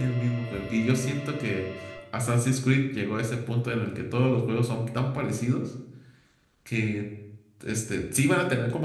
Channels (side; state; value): both; identical; correlation 1.00